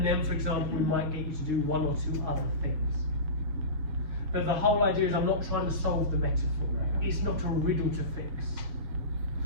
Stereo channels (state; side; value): late; left; 7.1 ms